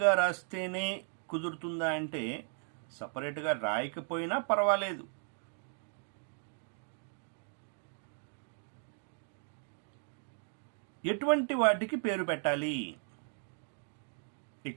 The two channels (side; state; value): left; silent; 54 dB below the other